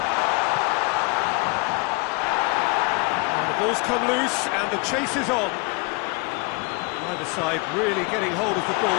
The ball's come loose and the chase is on. Either side really getting hold of the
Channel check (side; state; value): right; quieter; 28.9 dB